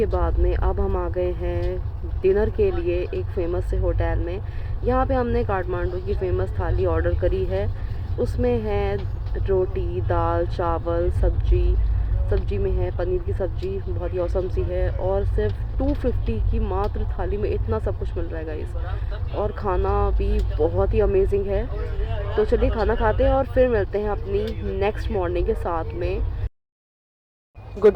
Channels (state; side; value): identical; both; correlation 1.00